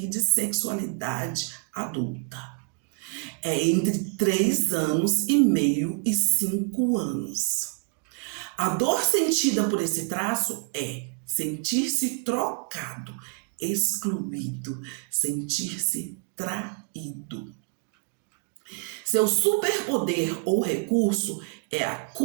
de sexualidade adulta. É entre 3 anos e meio e 5 anos. A dor sentida por esse traço é sentir-se trocado, excluído, sentir-se traído. Seu superpoder ou recurso é a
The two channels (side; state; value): left; quieter; 38.8 dB